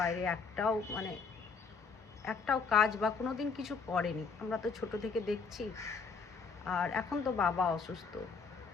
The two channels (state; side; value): quieter; right; 5.1 dB